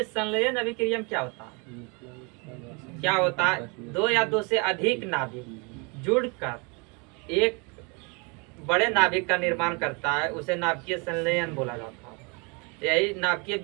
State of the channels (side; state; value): left; quieter; 31.4 dB